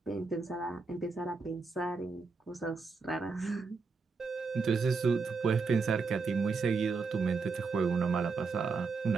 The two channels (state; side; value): quieter; left; 4.6 dB